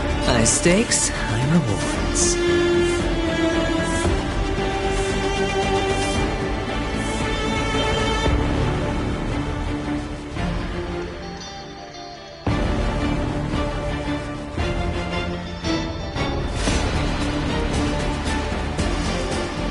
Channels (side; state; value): both; identical; correlation 1.00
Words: High stakes, high rewards.